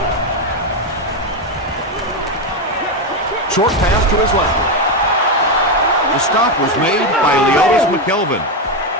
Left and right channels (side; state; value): both; normal; correlation 0.08